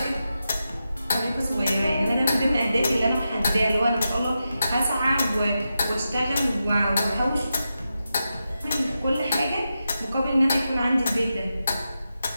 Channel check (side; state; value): both; inverted; correlation -0.89